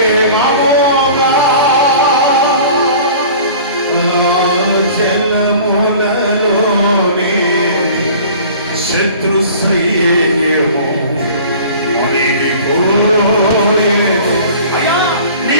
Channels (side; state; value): both; inverted; correlation -0.44